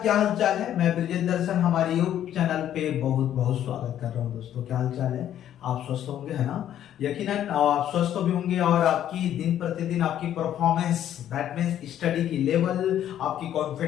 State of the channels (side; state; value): right; quieter; 11.0 dB